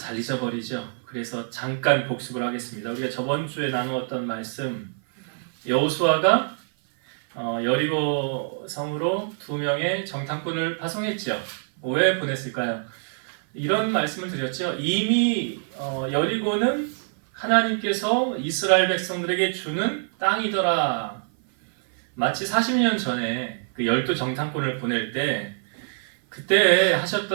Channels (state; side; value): silent; left; 57 dB below the other